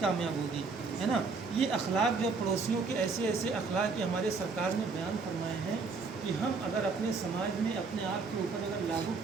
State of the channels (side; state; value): left; quieter; 4.4 dB